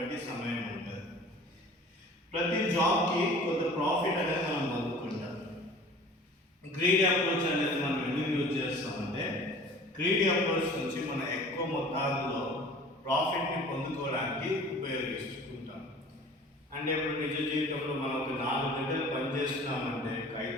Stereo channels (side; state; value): both; normal; correlation 0.45